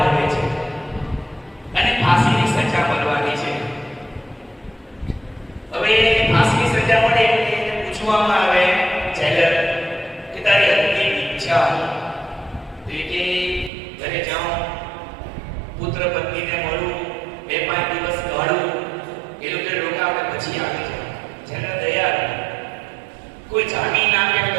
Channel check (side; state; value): left; drops out; at 13.7 s